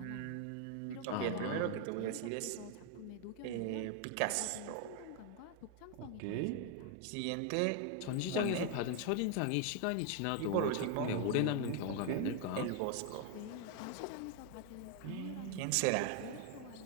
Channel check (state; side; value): different; both; correlation 0.00